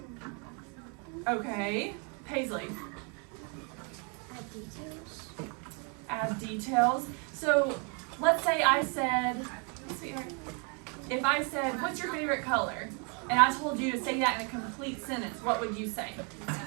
Okay, Paisley. Add details. So let's say I said, if I said, what's your favorite color? And I told you to say that in a complete sentence, what would you say?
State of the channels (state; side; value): quieter; left; 35.7 dB